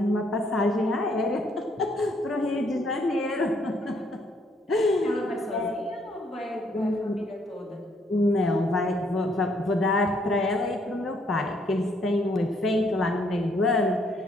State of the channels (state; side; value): normal; both; correlation 0.69